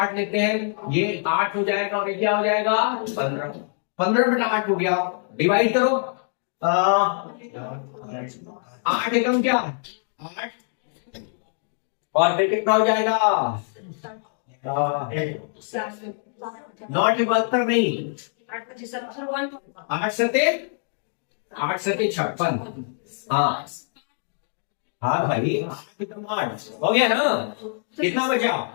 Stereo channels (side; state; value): right; silent; 58 dB below the other